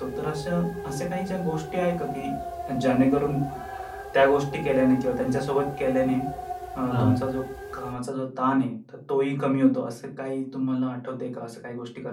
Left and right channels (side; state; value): both; identical; correlation 1.00